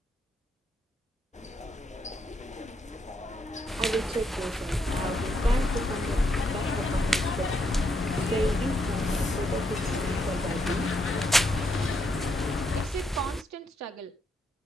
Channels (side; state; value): both; normal; correlation 0.77